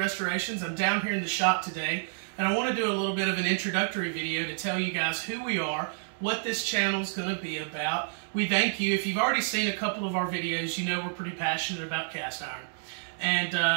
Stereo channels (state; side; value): silent; left; digital silence